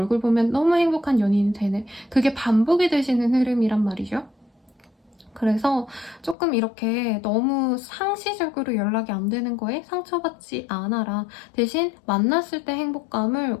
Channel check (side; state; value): right; drops out; at 6.4 s